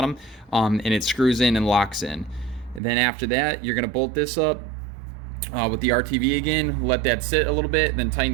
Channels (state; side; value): drops out; left; at 2.8 s